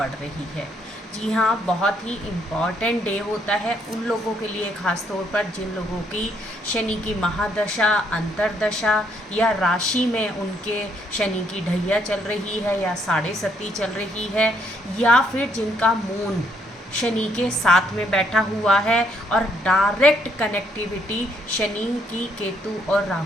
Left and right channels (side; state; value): both; normal; correlation 0.71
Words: रही है। जी हाँ, बहुत ही इम्पॉर्टेंट डे होता है उन लोगों के लिए, ख़ास तौर पर जिन लोगों की शनि की महादशा, अंतरदशा या राशि में उनके शनि की ढैया चल रही है या साढ़े सती चल रही है, या फिर जिनका मून शनि के साथ में बैठा हुआ है और डायरेक्ट कनेक्टिविटी शनि की केतु और